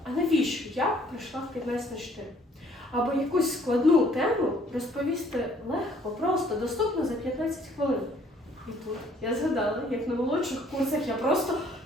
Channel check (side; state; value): both; normal; correlation 0.61